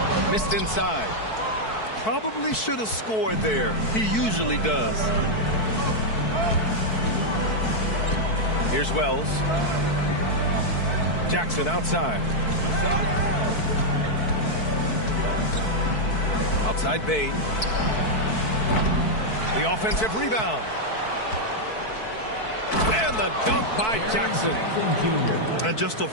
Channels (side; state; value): right; late; 4.6 ms